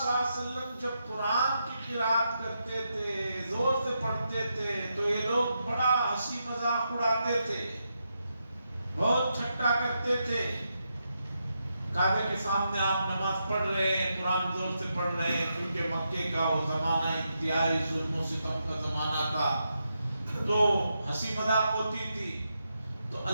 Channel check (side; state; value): both; inverted; correlation -0.84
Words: اللہ علیہ وسلم جب قرآن کی قرات کرتے تھے، زور سے پڑھتے تھے، تو یہ لوگ بڑا ہنسی مذاق اڑاتے تھے، بہت ٹھٹا کرتے تھے۔ کعبے کے سامنے آپ نماز پڑھ رہے ہیں، قرآن زور سے پڑھ رہے ہیں، کیونکہ مکے کا وہ زمانہ انتہائی ظلم و ستم کا زمانہ تھا، تو ہنسی مذاق ہوتی تھی۔ تو